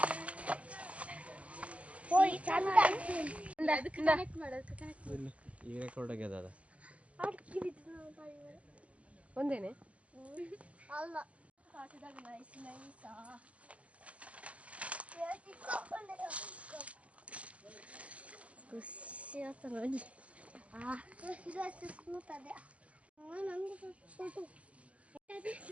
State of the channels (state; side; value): late; left; 0.064 ms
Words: ಈಗ ರೆಕಾರ್ಡ್ ಆಗ್ಯದ ಅದ ಒಂದೇನೆ ಅಲ್ಲ ಖುಷಿ ಆತ ನೋಡಿ. ಕೂತದೆ